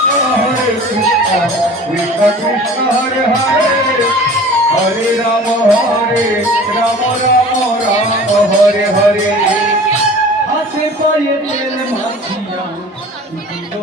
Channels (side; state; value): both; normal; correlation 0.43